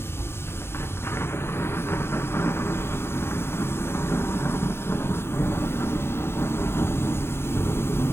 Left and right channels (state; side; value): late; right; 0.12 ms